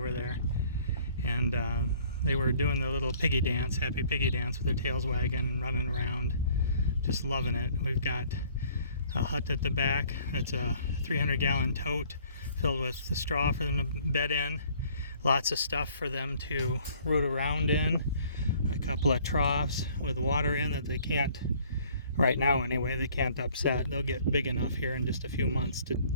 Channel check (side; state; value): both; inverted; correlation -0.58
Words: there. And they were doing the little piggy dance, happy piggy dance with their tails wagging and running around. Just loving it. We've got a hut at the back. It's a 300-gallon tote filled with the straw for them to bed in. Lots of stuff for them to root around in. A couple of troughs with water in that they can't, right now anyway, they can't upset. They'll get big enough here in just a few months to